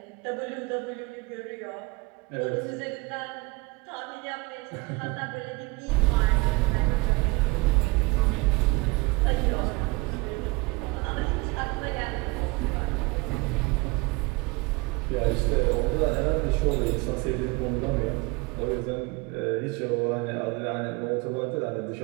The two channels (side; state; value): left; quieter; 24.5 dB